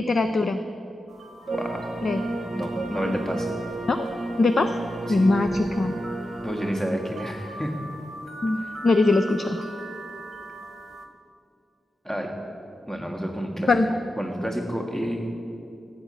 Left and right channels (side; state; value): both; normal; correlation 0.90